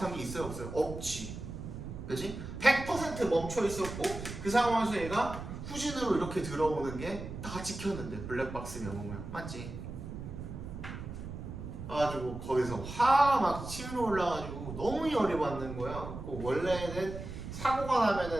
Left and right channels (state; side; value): noise; right; rumble, 9 dB below the sound